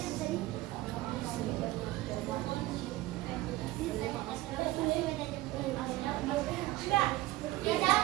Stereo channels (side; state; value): left; quieter; 17.4 dB